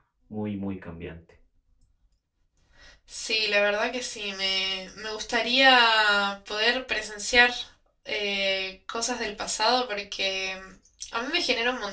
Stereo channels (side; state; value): both; identical; correlation 1.00